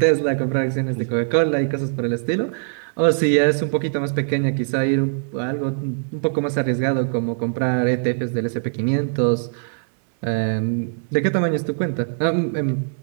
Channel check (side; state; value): left; silent; digital silence